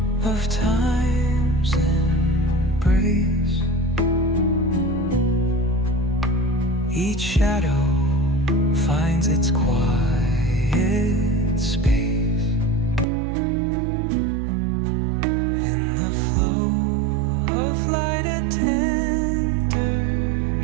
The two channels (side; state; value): left; drops out; at 13.1 s